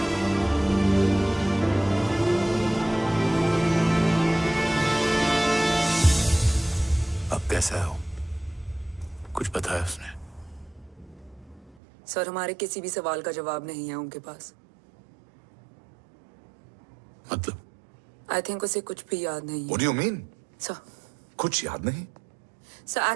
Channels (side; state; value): left; drops out; at 11.8 s